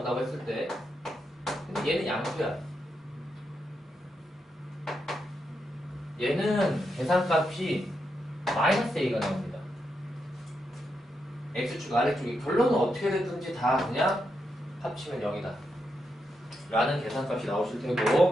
했을 때 근데 얘는 양수야. 얘는 계산값이 마이너스 A가 나옵니다. X축 아래쪽이 결론은 어떻게 됐든지 다 그냥 합치면 0이다 라는 계산값이 나오실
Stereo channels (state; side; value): normal; both; correlation 0.84